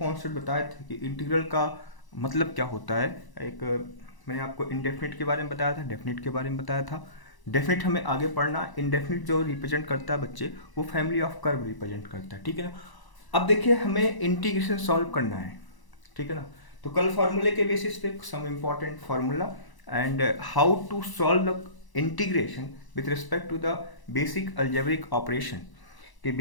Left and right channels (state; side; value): late; right; 1.0 ms